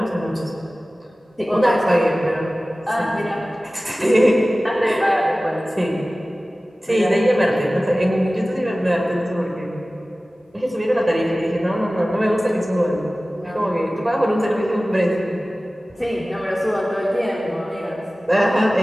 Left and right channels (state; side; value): normal; both; correlation 0.97